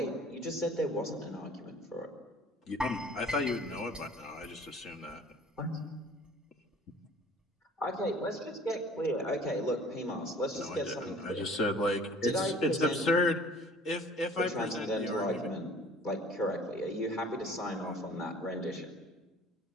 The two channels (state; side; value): normal; both; correlation 0.50